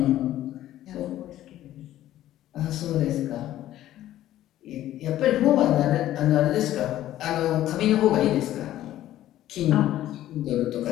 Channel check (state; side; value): quieter; right; 13.4 dB